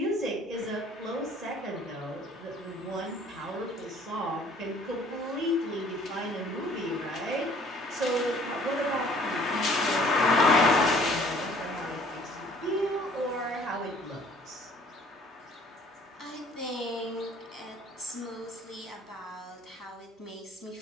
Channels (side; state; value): both; normal; correlation 0.56